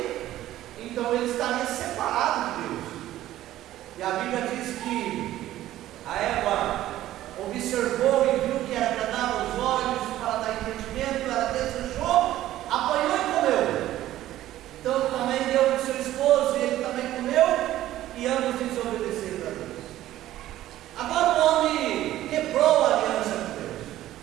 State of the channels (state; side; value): quieter; left; 14.0 dB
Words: então ele estaria separado de Deus. E a Bíblia diz que a Eva observou e viu que era agradável aos olhos, para dar entendimento, ela desejou, apanhou e comeu. Então também deu para o seu esposo e ele também comeu, e ambos desobedeceram a Deus. Agora o homem quebrou a aliança com Deus.